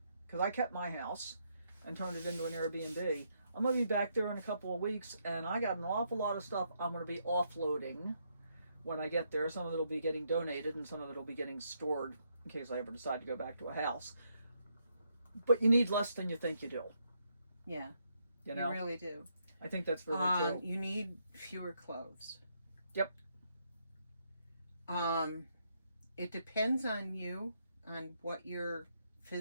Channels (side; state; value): both; inverted; correlation -0.76